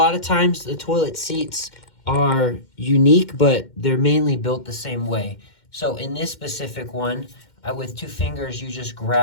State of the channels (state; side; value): late; right; 2.1 ms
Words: of times the toilet seats are unique, but they're mainly built the same way. So in this specific one, with 2 fingers, you just